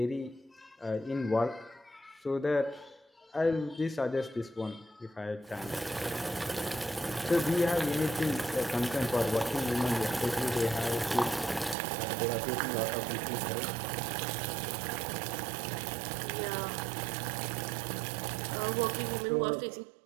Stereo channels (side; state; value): left; drops out; at 11.8 s